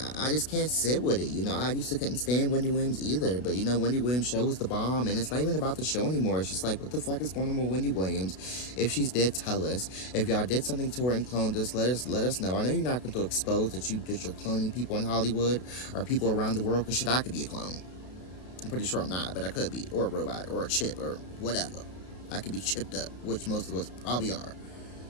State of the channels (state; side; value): late; right; 32 ms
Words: I just can't sit with it, you know. I used to couldn't stand Wendy Williams either. But, you know, Wendy Williams' show was the bomb. And it's not even about the show anymore. It's just like, what the fuck is going on with Wendy Williams? If she's dead, tell us. If y'all did something to her and cloned us, let us know. I know you're not going to expose that you're cloning people in Hollywood or people around the world. Because shit, I could be a clone. I'm pretty sure I'm not, but I could be. Or a robot, or a chip, or whatever. I could be chipped up, which most of us probably are.